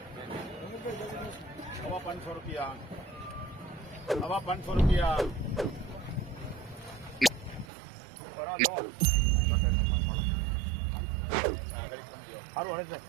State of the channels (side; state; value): left; drops out; at 7.7 s